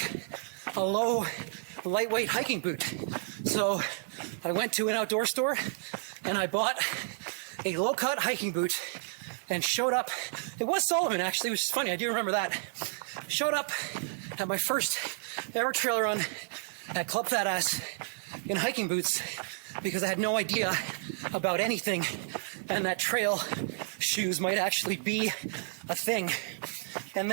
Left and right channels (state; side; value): silent; left; digital silence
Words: a low, lightweight hiking boot. So I went to an outdoor store and I bought a low-cut hiking boot and showed up. It was Salomon, actually, which is funny. I do remember that. Showed up at my first ever trail run at Club Fat Ass in hiking boots because I had no idea about anything and that trail shoes might actually be a thing. And